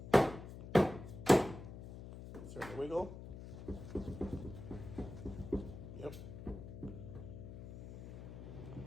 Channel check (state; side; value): noise; left; hum, 11 dB below the sound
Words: Start to wiggle. Yep.